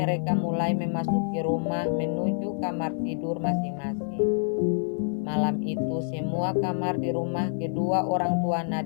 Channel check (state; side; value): silent; right; 60 dB below the other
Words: mulai memasuki rumah menuju kamar tidur masing-masing. Malam itu semua kamar di rumah kedua orang tua